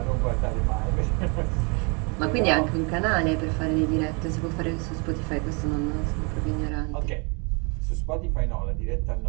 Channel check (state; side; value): quieter; left; 32.8 dB